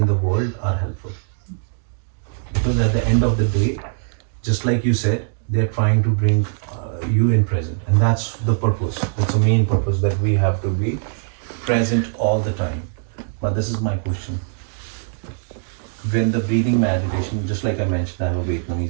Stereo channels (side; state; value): left; silent; digital silence